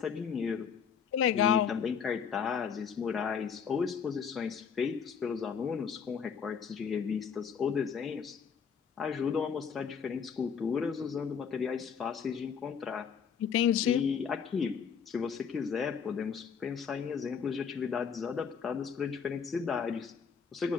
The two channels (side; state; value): right; quieter; 6.8 dB